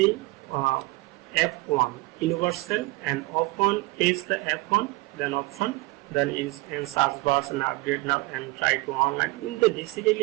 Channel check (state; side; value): quieter; left; 21.8 dB